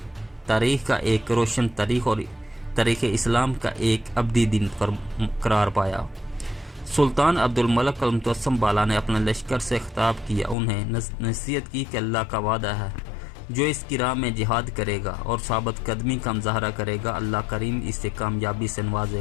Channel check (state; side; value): drops out; right; at 10.6 s